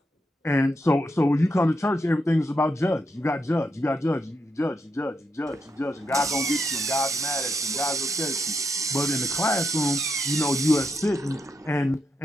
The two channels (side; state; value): both; normal; correlation 0.82